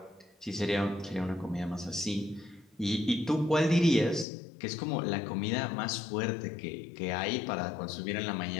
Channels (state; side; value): drops out; right; at 4.2 s